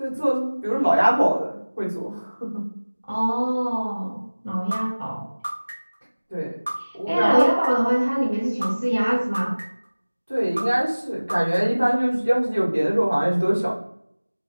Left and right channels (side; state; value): both; inverted; correlation -1.00